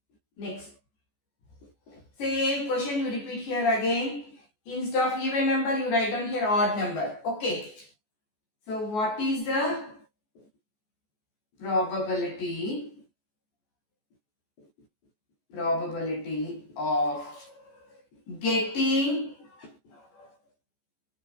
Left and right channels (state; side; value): late; right; 14 ms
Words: Next. Same question you repeat here again. Instead of even number you write down here odd number. Okay. So what is the probability of getting